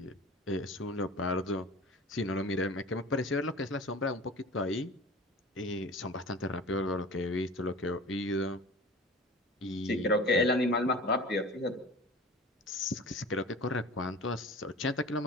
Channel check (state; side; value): normal; both; correlation 0.39